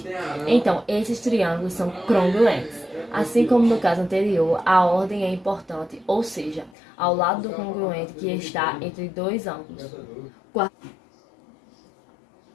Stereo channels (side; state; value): right; drops out; at 6.7 s